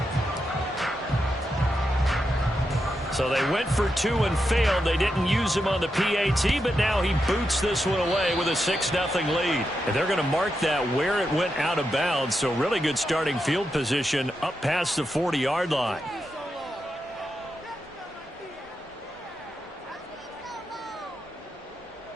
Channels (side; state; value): both; normal; correlation 0.86